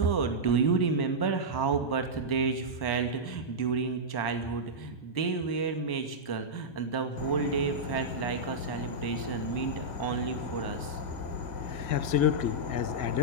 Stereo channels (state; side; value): late; right; 1.0 ms